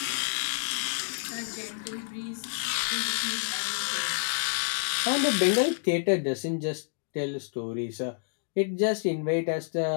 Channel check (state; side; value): silent; right; digital silence